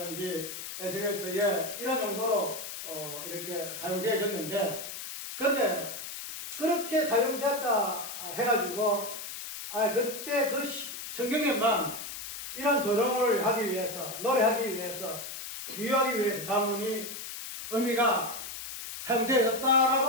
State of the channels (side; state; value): left; noise; hiss, 8 dB below the sound